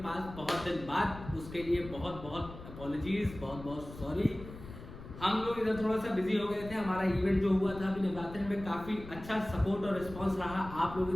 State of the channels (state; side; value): noise; left; rumble, 14 dB below the sound